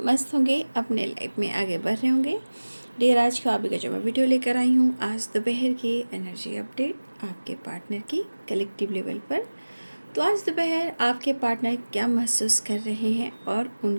मस्त होंगे, अपने लाइफ में आगे बढ़ रहे होंगे। डियर, आज का अभी का जो मैं वीडियो लेकर आई हूँ, आज दोपहर की एनर्जी अपडेट आपके पार्टनर की कलेक्टिव लेवल पर। तो आज दोपहर आपके पार्टनर क्या महसूस कर रहे हैं और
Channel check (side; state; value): both; inverted; correlation -1.00